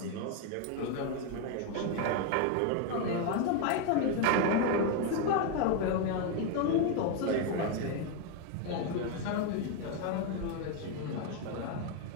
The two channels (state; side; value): different; both; correlation 0.01